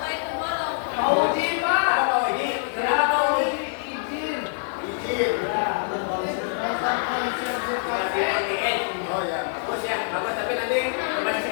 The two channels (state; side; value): silent; right; digital silence